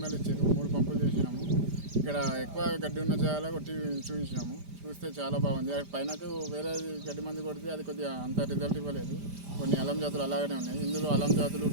ml ఇచ్చారు. 3 పంపులు చేసినాము. ఇక్కడ ఎక్కువ గడ్డి ఉన్న జాగాలో కొట్టి చూపించినాము. చూస్తే చాలా బాగుంది. పైనకు వేరే గడ్డి మంది కొడితే అది కొద్దిగా అంత రిజల్ట్ ఇవ్వలేదు. కొన్ని అలం జాతులు అలాగనే ఉన్నాయి. ఇందులో అలం జాతులు,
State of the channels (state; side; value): late; left; 5.0 ms